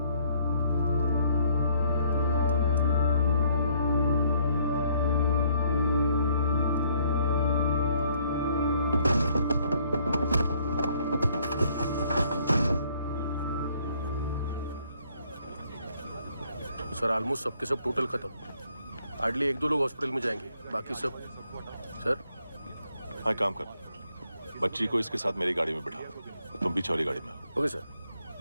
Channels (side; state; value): both; inverted; correlation -0.66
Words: सर ऑलमोस्ट सबके सब टोटल खत्म। हार्डली 1-2 लोग हॉस्पिटल में जाएंगे, बाकी सब। सर हाँ काम कर, बच्ची को इसके साथ मेरी गाड़ी में बिठा, तुम पीछे वाली गाड़ी में। Okay sir.